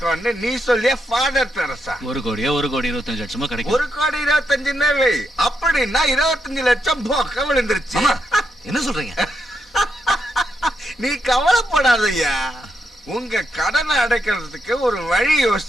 நீ சொல்லிய ஃபாதர் தெரசா? 1 கோடியா 1 கோடி 25 லட்சமா கிடைக்கும். 1 கோடி 25 வை. அப்படின்னா 25 லட்சம் போக்க விழுந்துருச்சு. என்ன சொல்றீங்க? நீ கவலைப்படாதய்யா, உங்க கடனை அடைக்கிறதுக்கு ஒரு வழி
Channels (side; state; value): both; normal; correlation 0.82